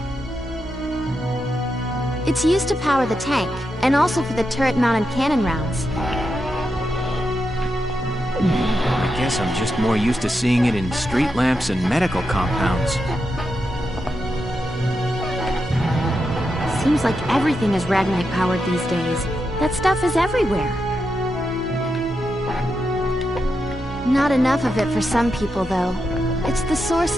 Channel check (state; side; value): normal; both; correlation 0.86